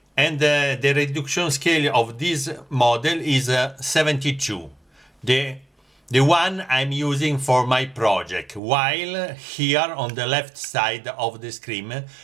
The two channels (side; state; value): left; drops out; at 8.6 s